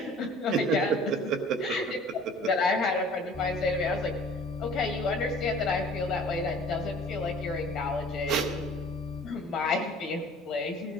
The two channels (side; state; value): both; normal; correlation 0.49